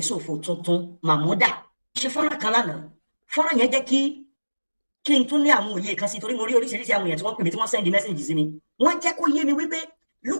tuntun Mahmuda ṣe fọ́nrán kan lánàá. Fọ́nrán yẹn jẹ́ kí n tún ní àwọn òye kan sí, torí mo rí oríṣiríṣi àwọn èèyàn tí wọ́n pè mí tí wọ́n send message sí mi. Wọ́n jẹ́ kó yé mi wípé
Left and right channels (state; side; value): inverted; both; correlation -1.00